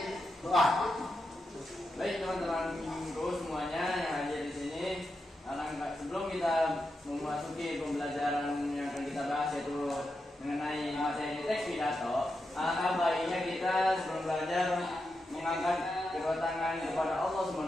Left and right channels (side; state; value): both; normal; correlation 0.87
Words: doa. Baik teman-teman minggu semuanya yang hadir di sini. Sebelum kita memasuki pembelajaran yang akan kita bahas yaitu mengenai materi teks pidato, alangkah baiknya kita sebelum belajar mengangkat kedua tangan kepada Allah